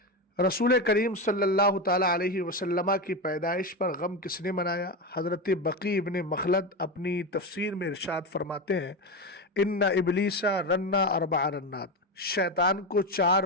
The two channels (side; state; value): both; normal; correlation 0.16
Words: رسول کریم صلی اللہ تعالیٰ علیہ وسلم کی پیدائش پر غم کس نے منایا؟ حضرت بقی ابن مخلد اپنی تفسیر میں ارشاد فرماتے ہیں، ان ابلیس رنا 4 رنات، شیطان کو